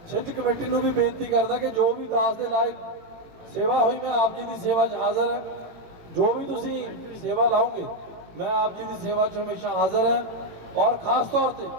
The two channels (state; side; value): late; left; 18 ms